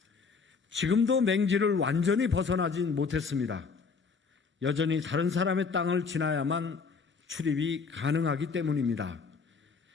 지금도 맹지를 완전히 벗어나진 못했습니다. 여전히 다른 사람의 땅을 지나야만 출입이 가능하기 때문입니다.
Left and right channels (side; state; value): right; quieter; 5.2 dB